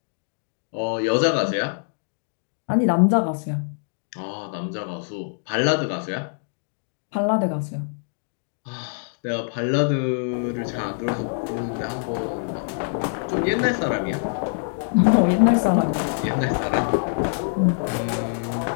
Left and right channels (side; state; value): right; silent; digital silence